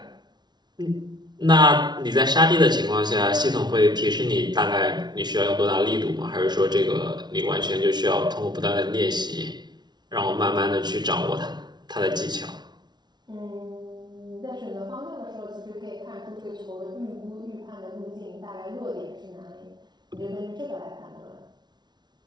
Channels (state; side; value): late; left; 0.20 ms